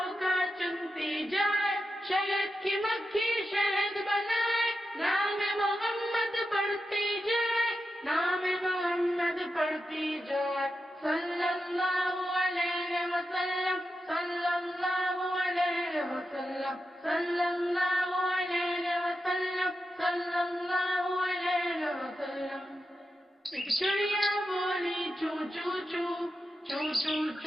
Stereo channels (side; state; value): both; normal; correlation 0.89